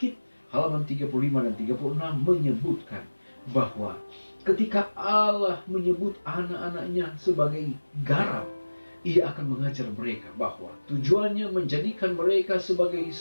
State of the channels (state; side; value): inverted; both; correlation -1.00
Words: halaman 35 dan 36 menyebutkan bahwa ketika Allah menyebut anak-anaknya sebagai garam, Ia akan mengajar mereka bahwa tujuannya menjadikan mereka sebagai